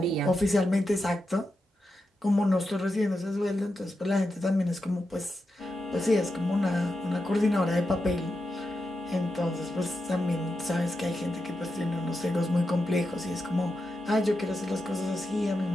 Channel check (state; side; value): normal; both; correlation 0.88